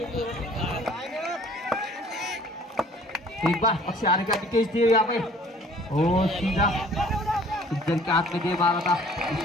एक बार अक्षय आरेकर निकेश देव यहाँ पे सीधा इधर के हाथ में दे मारा था।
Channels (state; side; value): normal; both; correlation 0.54